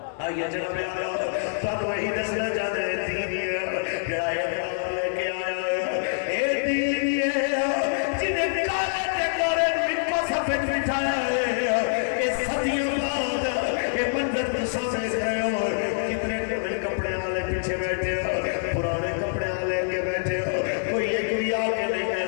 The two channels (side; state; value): right; silent; 61 dB below the other